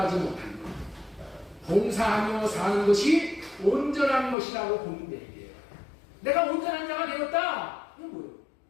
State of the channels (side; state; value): right; drops out; at 4.4 s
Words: 못하는 것. 봉사하며 사는 것이 온전한 것이라고 보면 돼요. 내가 온전한 자가 되었다. 이건 뭐예요?